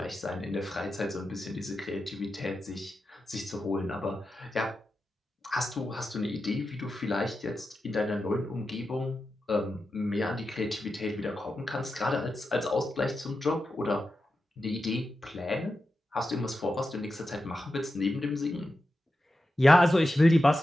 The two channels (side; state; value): both; normal; correlation 0.90